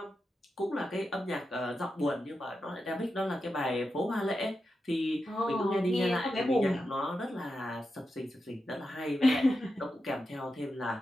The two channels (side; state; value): both; normal; correlation 0.89